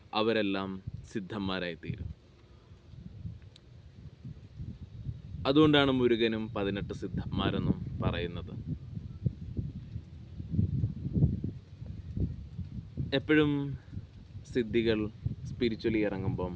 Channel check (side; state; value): both; identical; correlation 1.00